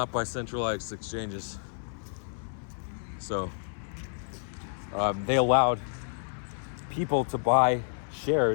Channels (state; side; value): silent; right; 58 dB below the other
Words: by centralized exchanges. So they allowed people to buy